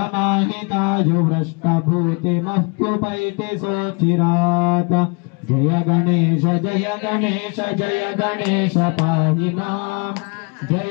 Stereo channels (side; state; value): right; quieter; 32.2 dB